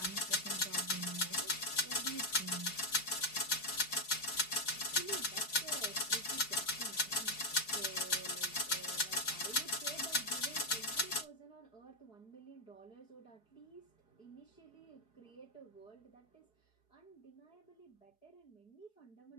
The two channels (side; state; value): right; late; 4.7 ms